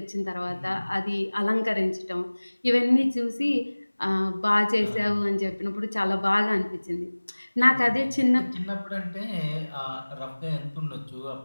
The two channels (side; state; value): both; inverted; correlation -1.00